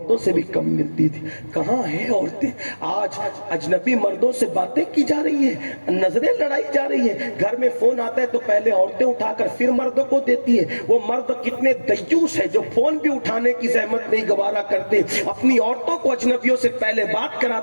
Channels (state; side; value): inverted; both; correlation -1.00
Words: سے بھی کم ملتی تھی۔ کہاں ہیں عورتیں؟ آج اجنبی مردوں سے باتیں کی جا رہی ہیں، نظریں لڑائی جا رہی ہیں، گھر میں فون آتا ہے تو پہلے عورتیں اٹھا کر پھر مردوں کو دیتی ہیں۔ وہ مرد کتنے دیوس ہیں جو فون بھی اٹھانے کی زحمت نہیں گوارا کرتے، اپنی عورتوں کو اجنبیوں سے پہلے بات